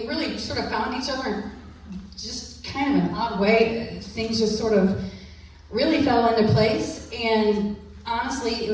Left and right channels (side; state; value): both; identical; correlation 1.00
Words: sort of found each other in just kind of an odd way. Things just sort of really fell into place. And honestly, it